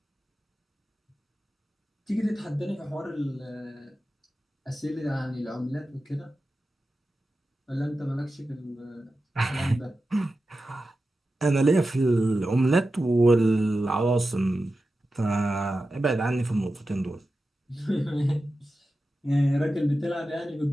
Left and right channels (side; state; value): both; normal; correlation 0.92